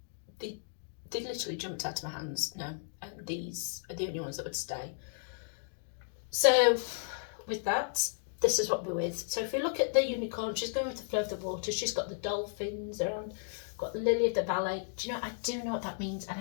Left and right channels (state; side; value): silent; right; digital silence